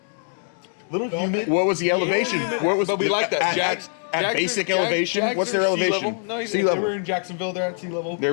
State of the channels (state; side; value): silent; right; 62 dB below the other